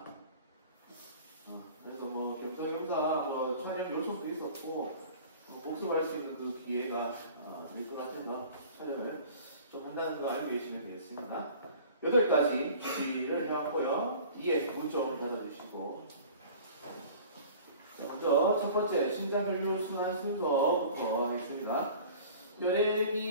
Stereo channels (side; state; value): both; inverted; correlation -0.45